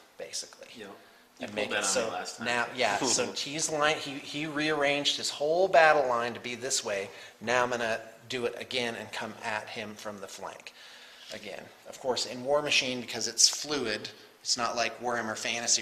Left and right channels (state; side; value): identical; both; correlation 1.00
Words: basically. Yep. And You make pulled it that so on me last time. now, yeah. So he's line. He rearranged his whole battle line to be this way. Now I'm going to do it again and come at him from the flank. Again, of course, in War Machine, because it's fluid, it's not like Warhammer Fantasy